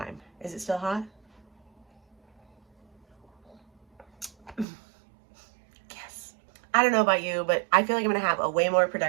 Is it still hot? I don't know about you, but I feel like I'm going to have a way more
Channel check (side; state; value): left; drops out; at 4.7 s